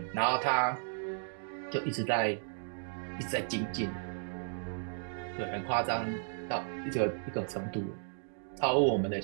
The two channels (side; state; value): left; silent; digital silence